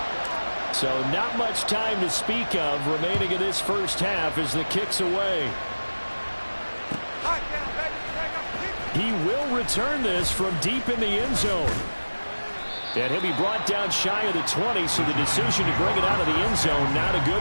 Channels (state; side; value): inverted; both; correlation -1.00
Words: So not much time to speak of remaining in this first half as the kick's away. He will return this from deep in the end zone. And he'll be brought down shy of the 20, so the decision to bring it out of the end zone, not a good